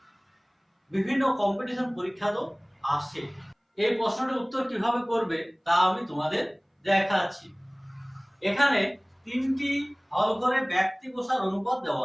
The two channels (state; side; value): identical; both; correlation 1.00